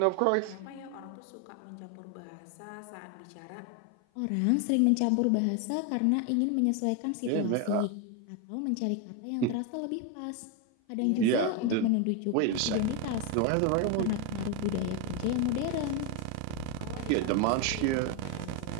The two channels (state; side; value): different; both; correlation 0.01